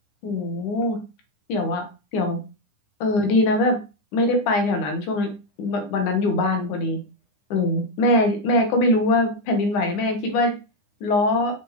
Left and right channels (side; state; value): right; late; 9.9 ms